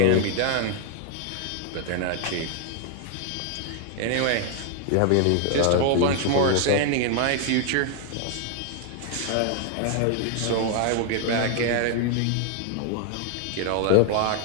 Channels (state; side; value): different; both; correlation 0.00